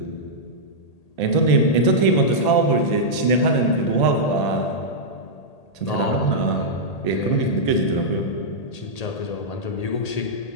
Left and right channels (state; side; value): late; right; 1.8 ms